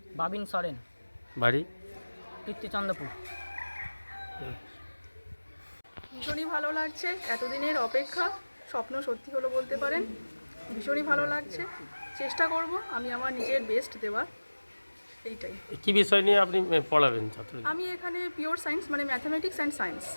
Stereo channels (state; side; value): inverted; both; correlation -1.00